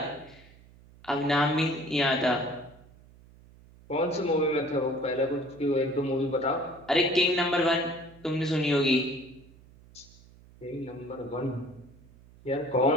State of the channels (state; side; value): noise; right; hum, 24 dB below the sound